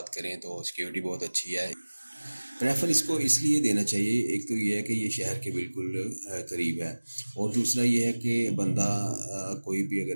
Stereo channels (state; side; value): inverted; both; correlation -1.00